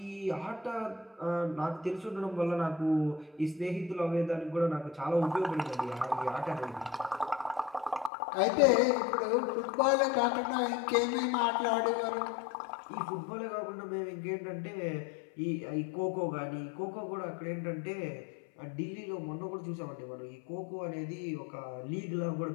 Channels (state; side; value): drops out; right; at 8.1 s